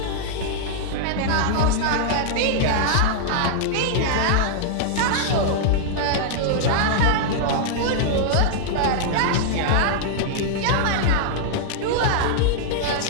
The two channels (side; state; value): both; different; correlation -0.01